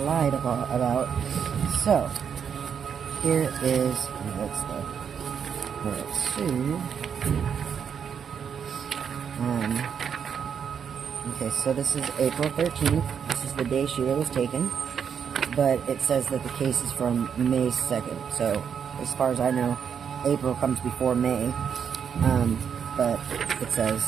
lied about. So, here is, what's the, where it's sued. Okay, so this is April 13th. This is the day Sheila was taken. But it says that the case is from May 2nd. So, as far as I know, April comes before May. But it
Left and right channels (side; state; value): left; quieter; 7.4 dB